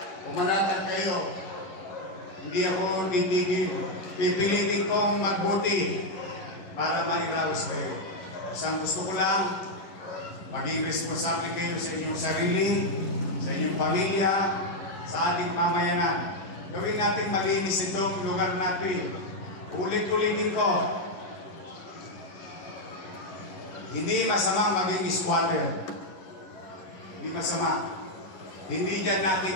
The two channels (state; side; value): late; right; 10 ms